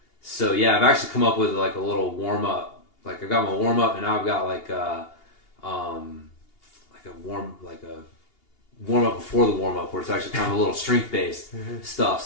so yeah, I've actually come up with a little warm up. I've got my warm up, and now I've got a warm up before the warm up, where it's actually kind of a little strength based stuff.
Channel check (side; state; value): right; late; 2.8 ms